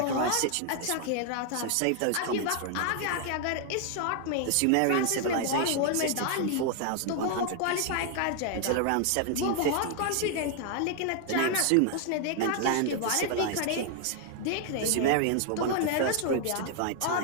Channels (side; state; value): both; different; correlation 0.00